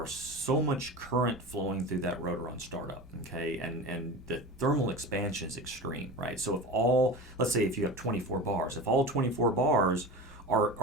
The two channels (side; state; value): both; normal; correlation 0.31